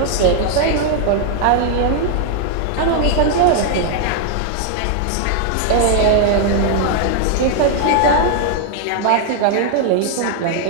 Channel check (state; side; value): different; both; correlation 0.00